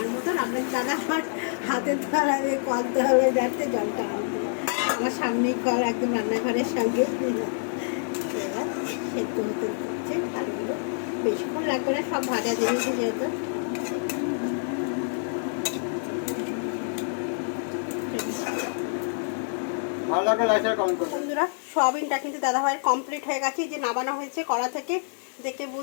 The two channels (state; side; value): silent; right; digital silence